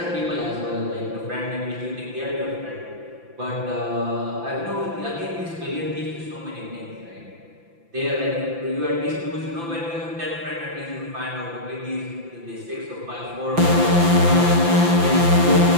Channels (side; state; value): left; late; 5.9 ms